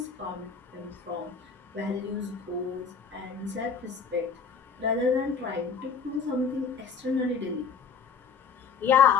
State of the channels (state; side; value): quieter; right; 5.8 dB